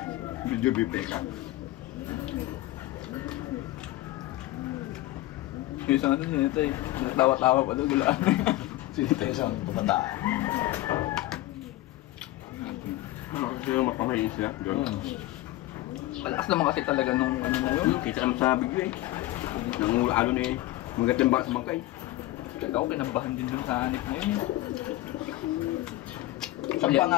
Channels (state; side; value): quieter; right; 16.9 dB